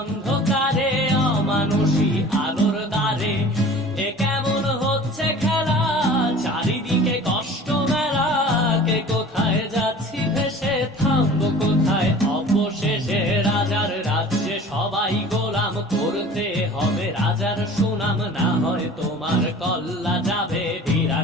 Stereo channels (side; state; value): both; normal; correlation 0.43